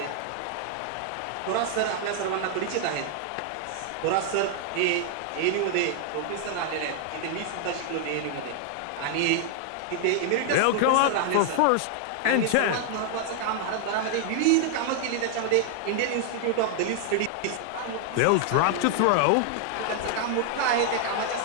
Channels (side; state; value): both; different; correlation 0.00